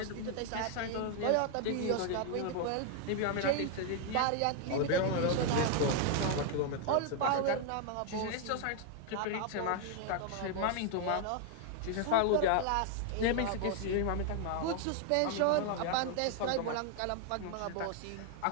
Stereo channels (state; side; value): different; both; correlation 0.00